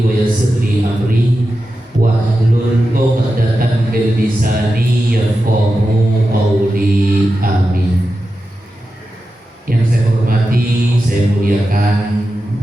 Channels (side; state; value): both; normal; correlation 0.91